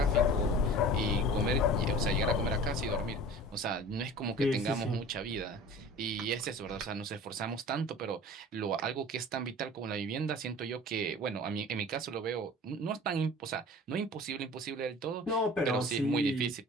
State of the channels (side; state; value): both; normal; correlation 0.41